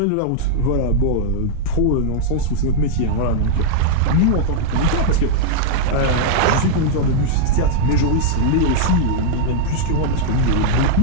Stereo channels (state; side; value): different; both; correlation -0.01